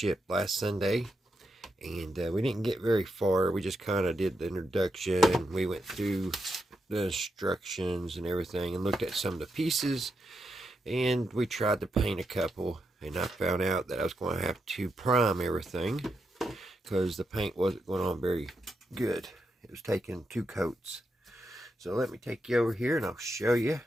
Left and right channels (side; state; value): both; normal; correlation 0.84